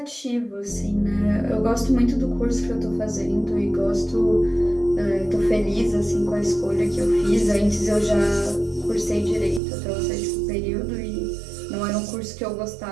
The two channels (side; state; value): left; drops out; at 9.6 s